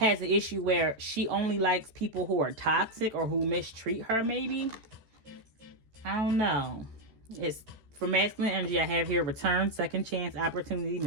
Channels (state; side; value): late; left; 13 ms